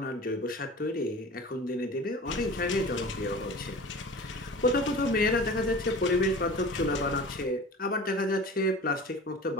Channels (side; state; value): both; normal; correlation 0.38